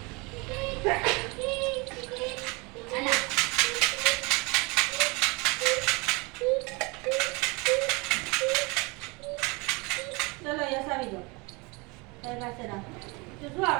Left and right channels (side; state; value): left; quieter; 27.7 dB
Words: ચલો યસ આવી જાઓ તારી પાસે રાખો તો શું